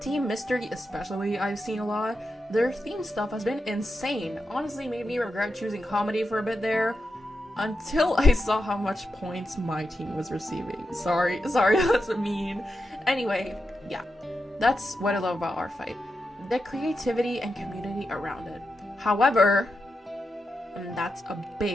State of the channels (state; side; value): normal; both; correlation 0.87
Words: Team Mystery especially, I've seen a lot. Their theme stuff has been insane. Honestly made me regret choosing comedy for a bit there, until I saw how much points my team was receiving. Sorry, that's mean. Anyway, yeah, that's what I love about Artfight. The creativity and community around it. However, and that's a